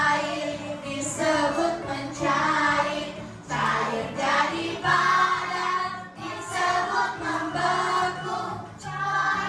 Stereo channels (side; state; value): both; identical; correlation 1.00